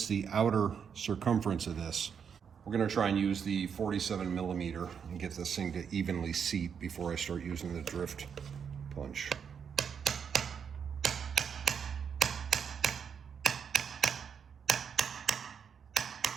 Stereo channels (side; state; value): left; quieter; 7.1 dB